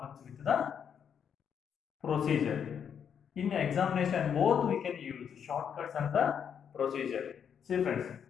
with the procedure. In examination, both we can use shortcuts and the procedure. See friends,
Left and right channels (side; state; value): right; quieter; 7.8 dB